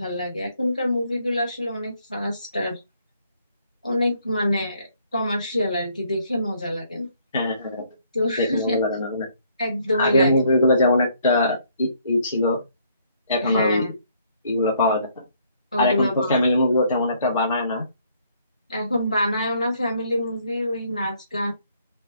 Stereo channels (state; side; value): inverted; both; correlation -0.66